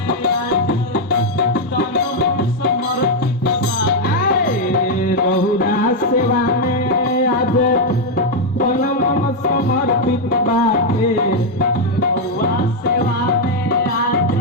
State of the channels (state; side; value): normal; both; correlation 0.01